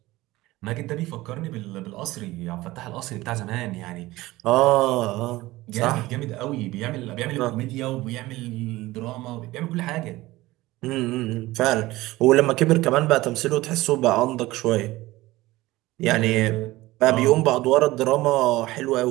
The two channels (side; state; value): left; quieter; 18.5 dB